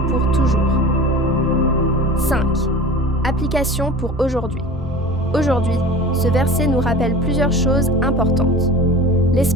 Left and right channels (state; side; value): normal; both; correlation 0.37